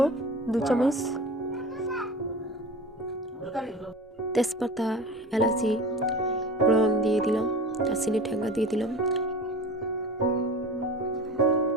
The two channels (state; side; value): normal; both; correlation 0.36